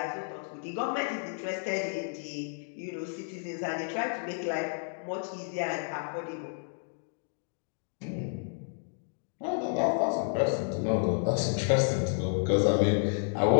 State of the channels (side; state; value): right; silent; 57 dB below the other